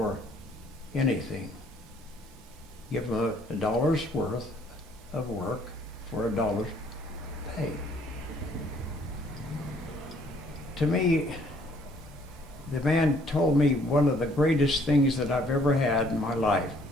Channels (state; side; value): normal; both; correlation 0.62